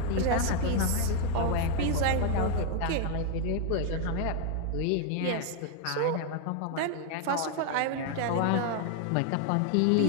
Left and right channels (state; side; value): different; both; correlation 0.00